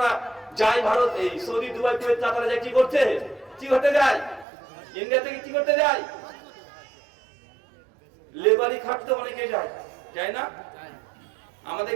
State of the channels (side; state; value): left; drops out; at 4.5 s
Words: যায় ভারত, এই সৌদি দুবাই কুয়েত দাদারা যায় কি করতে, কি করতে যায়? ইন্ডিয়া থেকে কি করতে যায়? লেবারি খাটতে অনেকে যায়, যায় না?